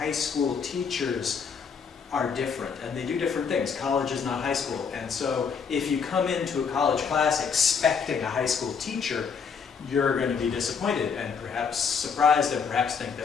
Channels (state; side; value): quieter; right; 6.1 dB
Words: school teachers are different, and they do different things. College is not high school, and so if you come into a college class expecting a high school teacher, you're going to be disappointed and perhaps surprised and perhaps think